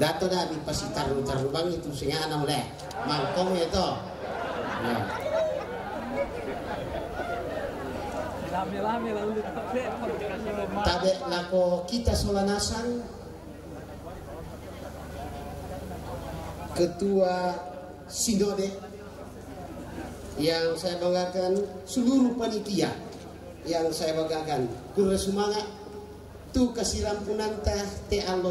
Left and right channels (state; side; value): identical; both; correlation 1.00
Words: dah di pasti taruh bang itu singa anak oleh mangkong ya toh. Tabe lako kita Solanasan, Ketua Sinode, yang saya banggakan seluruh panitia yang saya banggakan. Kurang semangat tu kasiram punanta te